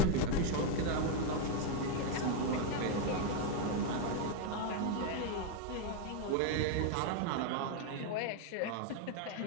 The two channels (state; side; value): different; both; correlation 0.01